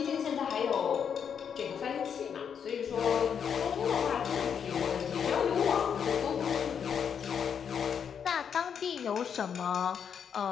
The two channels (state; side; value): quieter; right; 7.5 dB